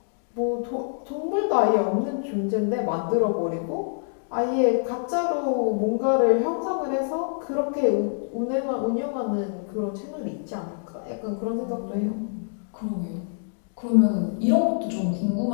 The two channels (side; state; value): right; silent; digital silence